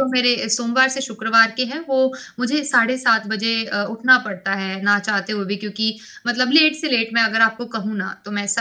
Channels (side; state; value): both; identical; correlation 1.00